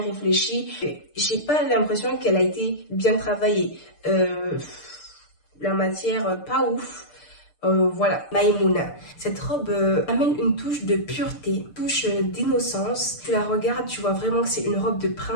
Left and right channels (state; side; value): late; right; 6.7 ms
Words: J'ai pas l'impression qu'elle a été bien travaillée. La matière, pas ouf. Voilà, Maïmouna. Cette robe amène une touche de pureté, une touche d'innocence. Tu la regardes, tu vois vraiment que c'est une robe de